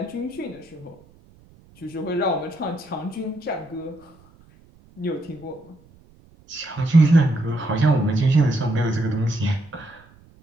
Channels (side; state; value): right; noise; rumble, 27 dB below the sound